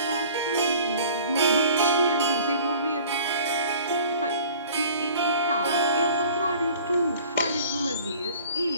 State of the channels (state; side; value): inverted; both; correlation -0.47